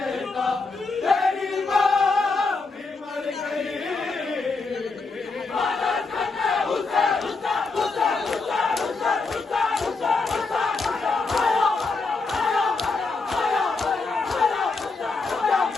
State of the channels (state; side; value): quieter; right; 4.0 dB